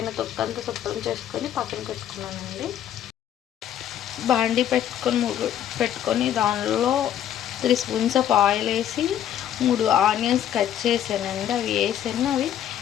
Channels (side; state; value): right; quieter; 10.7 dB